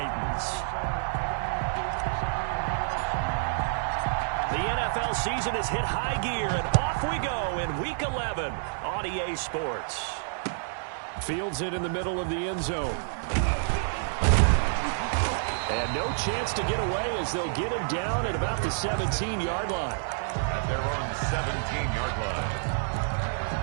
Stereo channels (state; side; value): silent; left; 59 dB below the other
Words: The NFL season has hit high gear, and off we go in Week 11 on EA Sports. Fields it in the middle of the end zone. And no chance to get away as they'll get him down at about the 17-yard line. At their own 17-yard line.